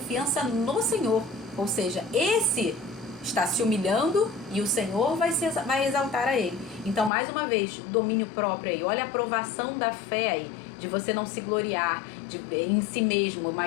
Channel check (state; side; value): drops out; right; at 7.1 s